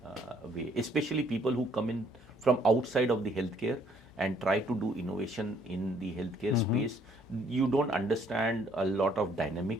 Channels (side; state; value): both; normal; correlation 0.64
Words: way. Especially people who come in from outside of the healthcare and try to do innovation in the healthcare space. You don't understand a lot of